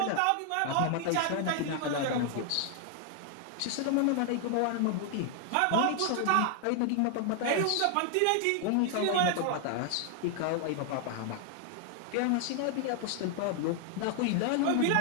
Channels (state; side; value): different; both; correlation 0.00